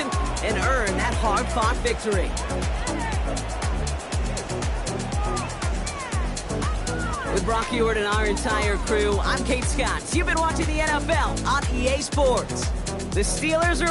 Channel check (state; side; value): identical; both; correlation 1.00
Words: and earn that hard-fought victory. With Brock Ewart and our entire crew, I'm Kate Scott. You've been watching the NFL on EA Sports. The Steelers